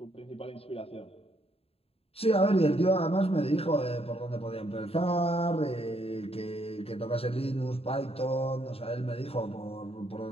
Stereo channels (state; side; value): late; right; 0.28 ms